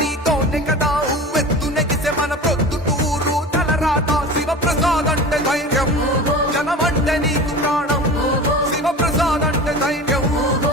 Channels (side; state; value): both; normal; correlation 0.34